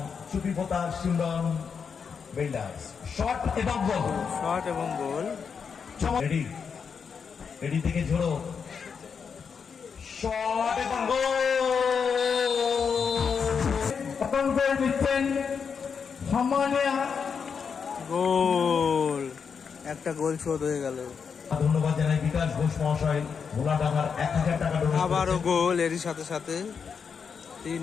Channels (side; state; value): right; quieter; 6.2 dB